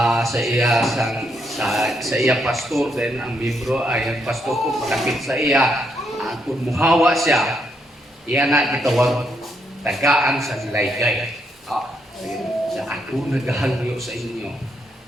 sa iya pastor then ang membro ay ang pastor ko malapit sa iya kung muhawa siya iya na gitawag tagaan sa laygay. Sa ako naghangyo sa inyo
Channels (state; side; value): normal; both; correlation 0.77